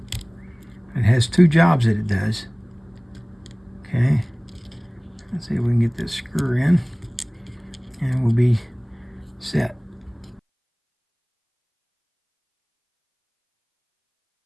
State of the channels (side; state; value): both; identical; correlation 1.00